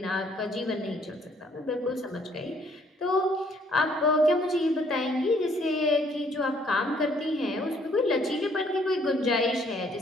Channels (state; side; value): normal; both; correlation 0.64